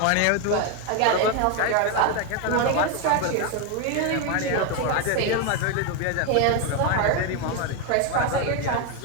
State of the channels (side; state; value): both; different; correlation 0.02